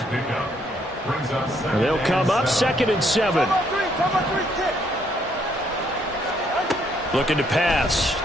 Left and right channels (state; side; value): normal; both; correlation 0.70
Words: They'll come up 2nd and 7. Looking to pass.